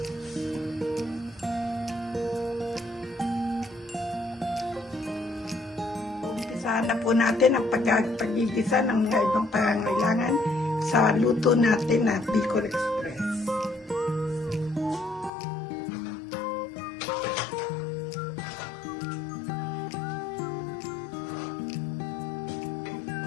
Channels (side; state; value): right; drops out; at 15.3 s